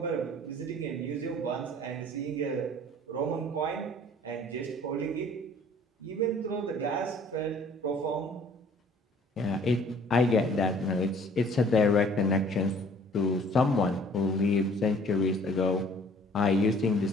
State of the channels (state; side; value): normal; both; correlation 0.54